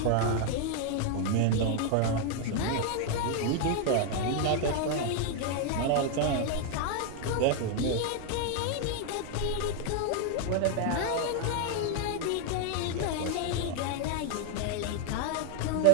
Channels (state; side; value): different; both; correlation 0.00